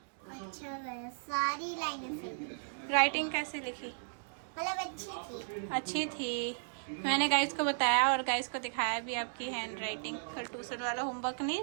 अच्छा गया, सारी लाइनें सही। राइटिंग कैसे लिखी? मतलब अच्छी थी। अच्छी थी। मैंने गाइस को बताया और गाइस को दिखाया भी आपकी हैंड राइटिंग। कल ट्यूशन वाला होमवर्क नहीं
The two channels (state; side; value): silent; left; digital silence